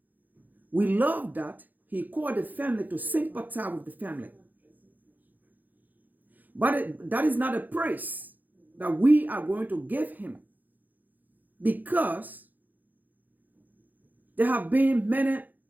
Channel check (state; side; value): late; left; 0.084 ms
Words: We love that he called the family to sympathize with the family. But that is not a praise that we are going to give him, because there have been many